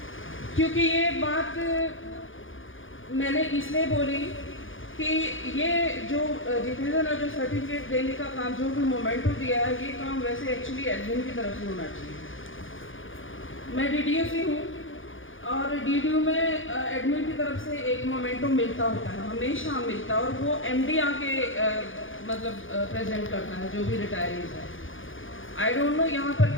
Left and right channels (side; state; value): right; late; 0.58 ms